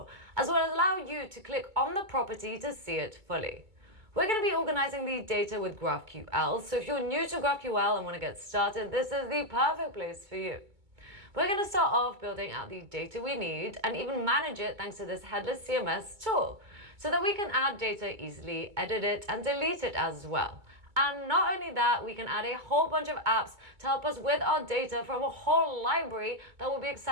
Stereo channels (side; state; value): left; late; 2.2 ms